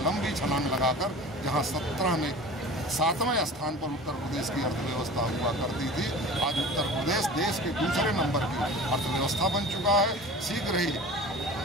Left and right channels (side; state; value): both; normal; correlation 0.39